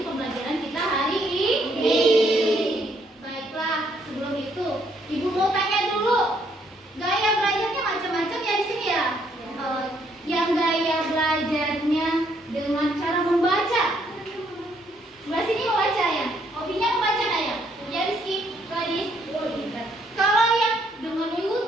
pembelajaran kita hari ini. Baiklah, sebelum itu Ibu mau tanya dulu, gaya belajarnya macam-macam ya di sini ya. Yang gaya belajarnya dengan cara membaca. Sebelah sini membaca ya. Hobinya membaca nggak ya? Ya Rizky, Gadis. Kalau yang dengan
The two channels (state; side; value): normal; both; correlation 0.70